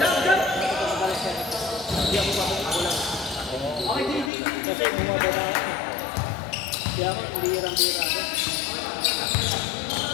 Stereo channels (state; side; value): drops out; right; at 4.3 s